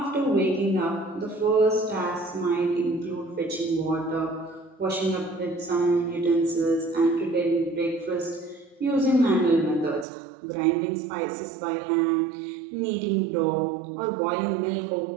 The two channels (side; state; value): left; drops out; at 10.1 s